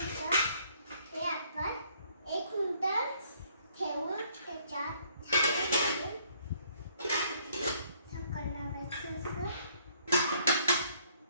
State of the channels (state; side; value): inverted; both; correlation -0.65